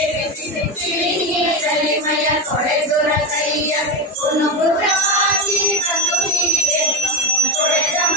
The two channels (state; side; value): normal; both; correlation 0.16